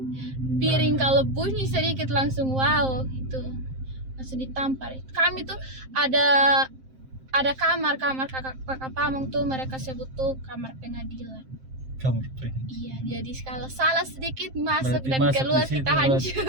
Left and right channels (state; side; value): late; left; 7.6 ms